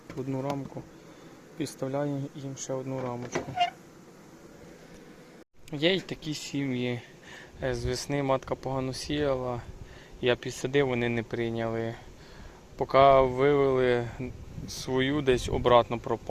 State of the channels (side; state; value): both; identical; correlation 1.00